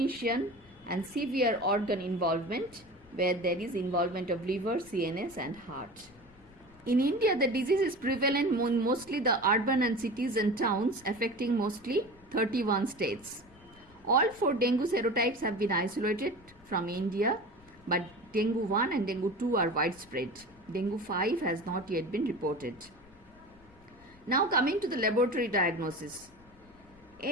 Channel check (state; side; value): noise; left; rumble, 26 dB below the sound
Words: and severe organ involvement where there is involvement of liver, CNS, and heart. In India, the disease is prevalent in mostly the urban and cities and towns, affecting mostly 31 states. All 4 dengue serotypes have been isolated from India, but dengue 1 and dengue 2 are widespread. Dengue 5 has not yet been reported. Now coming to the laboratory diagnosis.